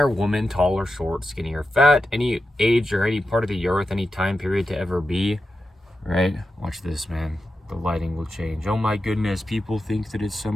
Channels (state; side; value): normal; both; correlation 0.90